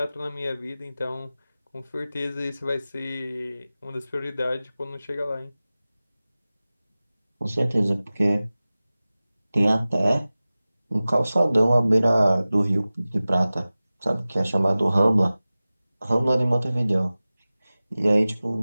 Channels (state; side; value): inverted; both; correlation -0.97